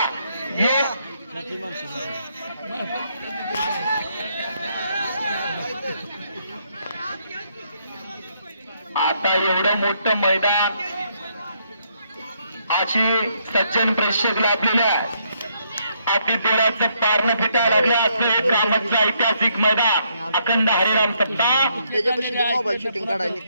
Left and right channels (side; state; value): both; inverted; correlation -0.73